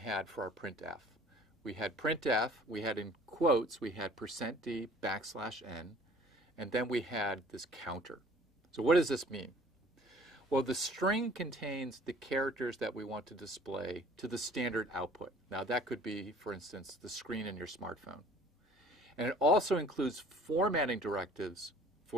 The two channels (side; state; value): both; normal; correlation 0.51